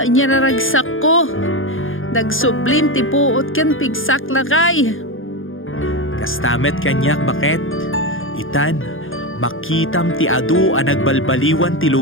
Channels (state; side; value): late; right; 0.59 ms